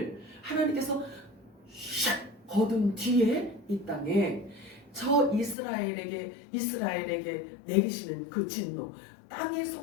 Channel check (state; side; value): drops out; right; at 5.6 s